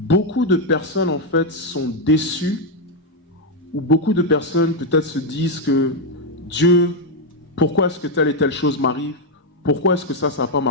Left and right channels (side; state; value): both; normal; correlation 0.02